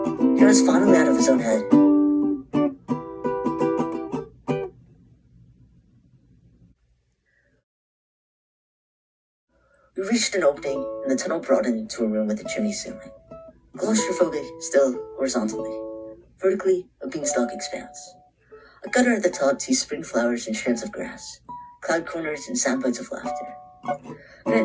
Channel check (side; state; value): both; identical; correlation 1.00